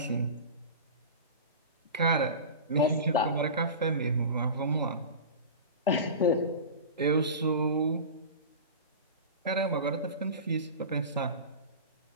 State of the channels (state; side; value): inverted; both; correlation -0.31